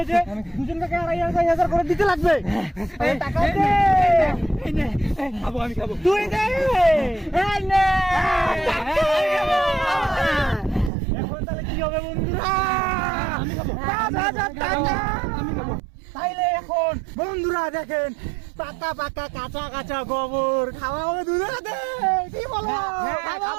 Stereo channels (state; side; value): drops out; left; at 10.9 s